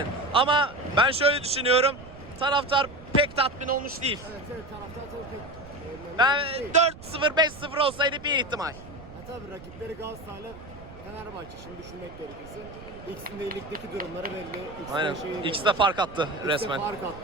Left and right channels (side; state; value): right; noise; rumble, 17 dB below the sound